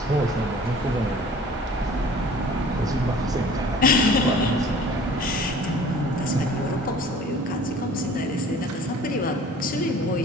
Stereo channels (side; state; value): both; normal; correlation 0.47